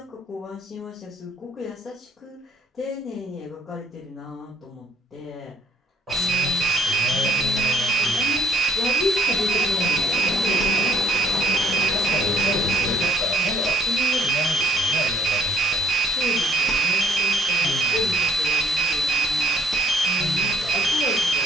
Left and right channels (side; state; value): both; normal; correlation 0.60